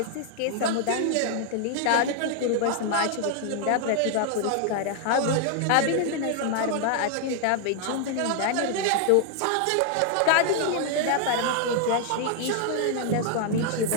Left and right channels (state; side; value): different; both; correlation 0.00